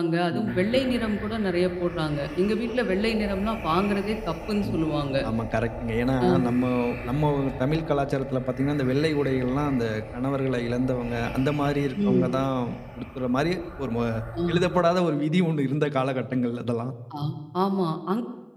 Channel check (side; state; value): both; identical; correlation 1.00